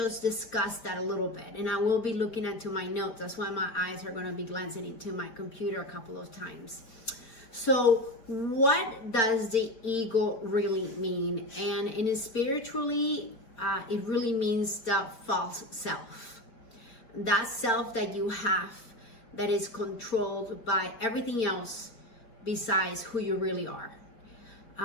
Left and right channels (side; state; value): right; late; 4.4 ms